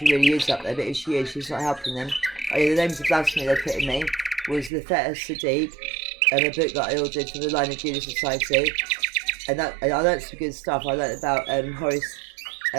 really is up there, but if she is, she's not helping them. Oh yeah, the names of blasphemy they put in me was the Feta Sadiq, and a book that I ordered for the Line of Judah Society. And I learned some good stuff. I learned about Horus,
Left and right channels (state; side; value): drops out; left; at 4.7 s